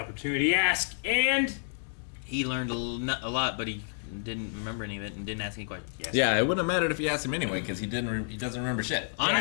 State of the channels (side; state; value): right; silent; digital silence